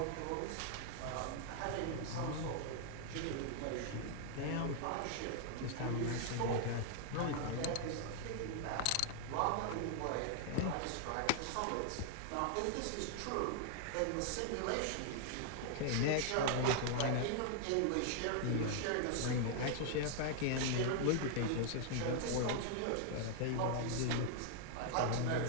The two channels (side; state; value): both; different; correlation 0.00